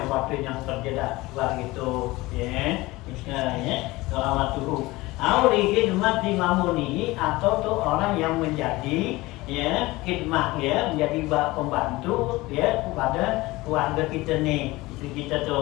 bantuin yang kerja dah gitu ya dohamat tuh. Auli khidmat di mamuni, atau tuh orang yang menjadi ya khidmah ya menjadi pembantu ya kepada keluarga kita nih, istri kita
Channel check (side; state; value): right; quieter; 20.4 dB